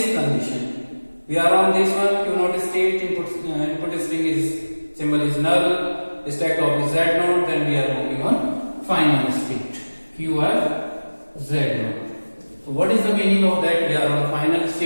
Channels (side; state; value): both; inverted; correlation -1.00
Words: condition. We are on this one, Q naught state, input string is symbol is null, stack top is Z naught. Then we are moving on final state, QF Z naught. So what is the meaning of that? We are on final